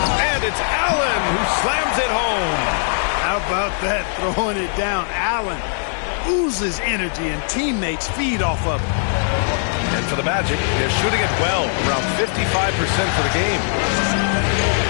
it's Allen who slams it home. How about that? Throwing it down. Allen oozes energy and teammates feed off of it. And for the Magic, they're shooting it well, around 55% for the game.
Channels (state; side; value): silent; right; 64 dB below the other